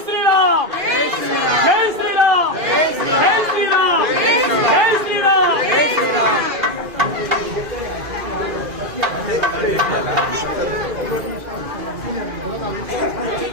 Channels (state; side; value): late; left; 2.4 ms